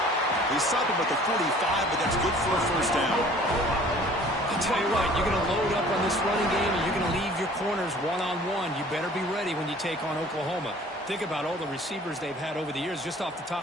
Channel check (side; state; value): both; normal; correlation 0.51